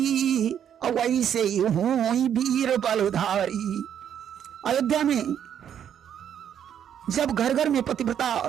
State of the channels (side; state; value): left; quieter; 9.2 dB